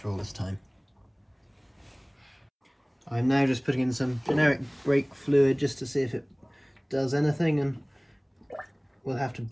all this time. I'm now just putting in some generic brake fluid just to see if it does anything, and we'll have to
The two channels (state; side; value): identical; both; correlation 1.00